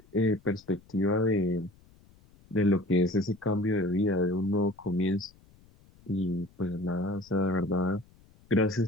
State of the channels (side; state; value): left; noise; rumble, 28 dB below the sound